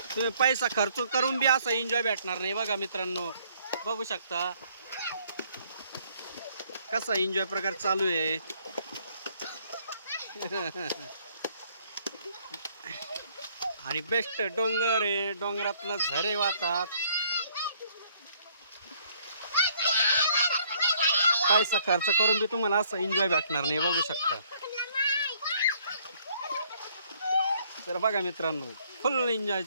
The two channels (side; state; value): both; inverted; correlation -0.64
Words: तुम्ही पैसा खर्च करून बी असा एन्जॉय भेटणार नाही. बघा मित्रांनो बघू शकता कसा एन्जॉय प्रकार चालू आहे. आणि बेस्ट डोंगर आहे, डोंगरातनं झरे वाहतात. पैसा खर्च करून बी तुम्हाला असं एन्जॉय भेटणार नाही, बघू शकता. तर बघा मित्रांनो, फुल एन्जॉय